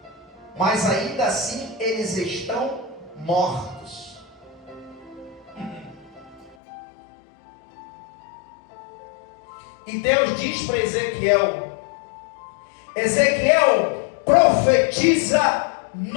mas ainda assim eles estão mortos. E Deus diz para Ezequiel: Ezequiel, profetiza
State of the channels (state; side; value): drops out; right; at 6.6 s